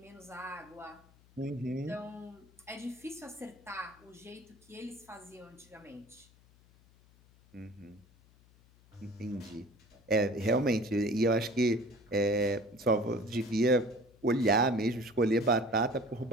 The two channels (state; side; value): noise; left; hum, 28 dB below the sound